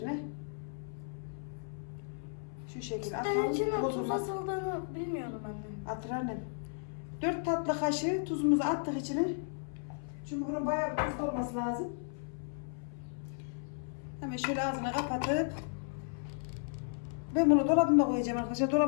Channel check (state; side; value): silent; right; 55 dB below the other